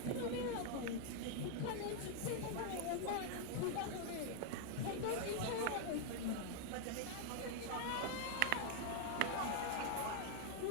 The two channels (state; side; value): different; both; correlation 0.00